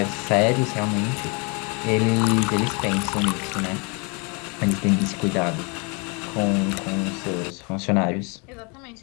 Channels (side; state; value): right; quieter; 32.4 dB